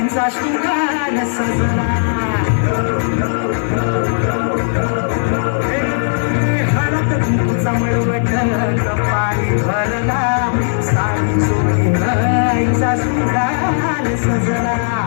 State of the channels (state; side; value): silent; right; digital silence